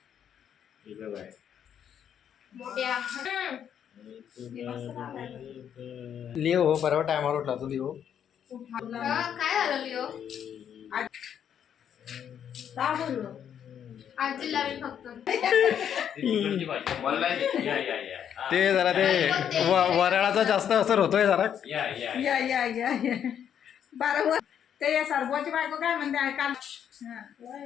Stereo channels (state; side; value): quieter; right; 8.9 dB